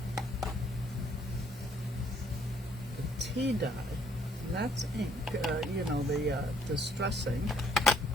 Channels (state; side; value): normal; both; correlation 0.65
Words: the tea dye, and that's ink, you know, the distressing.